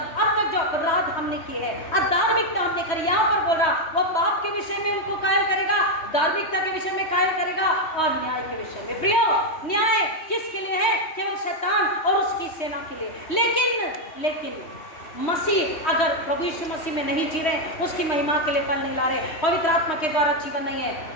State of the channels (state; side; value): late; right; 3.1 ms